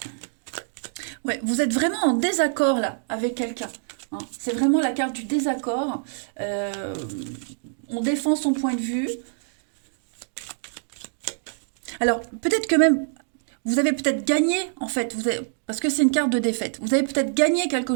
Ouais, vous êtes vraiment en désaccord là avec quelqu'un. Hein. C'est vraiment la carte du désaccord. On défend son point de vue. Alors, peut-être que même, vous avez peut-être gagné, en fait, parce que c'est une carte de défaite. Vous avez peut-être gagné quelque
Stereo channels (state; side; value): silent; left; digital silence